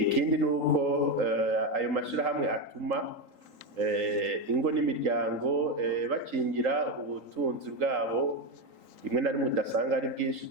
Ikindi nuko ayo mashirahamwe atuma ingo n'imiryango bakingira ubutunzi bwabo, rimwe na rimwe udasanga ari bwinshi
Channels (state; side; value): late; left; 3.8 ms